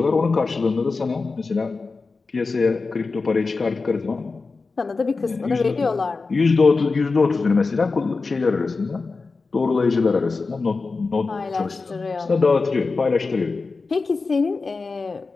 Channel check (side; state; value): right; quieter; 4.1 dB